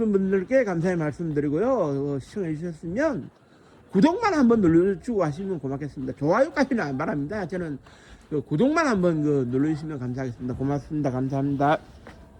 분들께 감사의 말씀드리고요. 시청해 주셨으면 구독만 한번 눌러주고 하시면 고맙겠습니다. 좋아요까지는 안 바랍니다. 저는 그 구독만 한번 눌러주시면 감사하겠습니다. 고맙습니다. 감사합니다.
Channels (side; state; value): both; identical; correlation 1.00